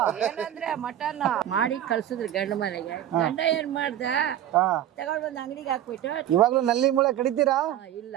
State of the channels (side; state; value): left; quieter; 11.6 dB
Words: ಏನಂದ್ರೆ ಮಟನ್ ಮಾಡಿ ಕಳ್ಸಿದ್ರು ಗಂಡ ಮನೆಗೆ. ಗಂಡ ಏನ್ ಮಾಡ್ದ, ಹಾ, ತಗೊಂಡ್ ಬಂದು ಅಂಗಡಿಗೆ ಹಾಕ್ಬಿಟ್ಟು, ಇವಾಗ್ಲೂ ನಲ್ಲಿ ಮೂಳೆ ಕಡಿತೀರಾ? ಇಲ್ಲ